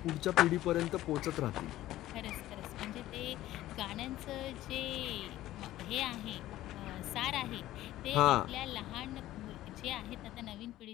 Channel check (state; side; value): quieter; right; 14.8 dB